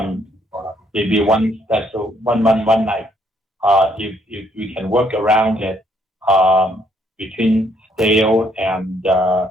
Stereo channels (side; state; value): both; normal; correlation 0.68